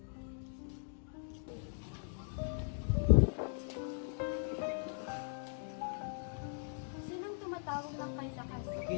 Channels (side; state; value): right; silent; digital silence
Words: Sinong tumatawag ng kay lakas?